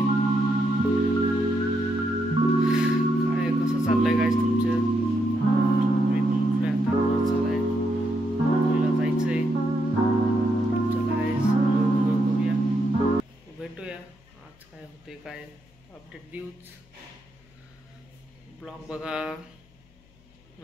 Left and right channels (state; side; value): noise; left; hum, 30 dB below the sound